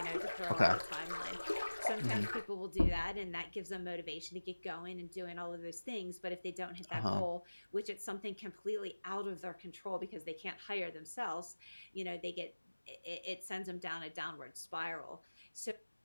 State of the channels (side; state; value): both; inverted; correlation -1.00